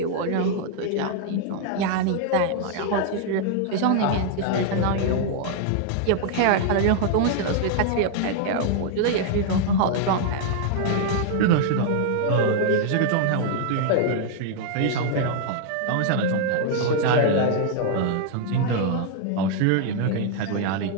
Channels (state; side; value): different; both; correlation 0.00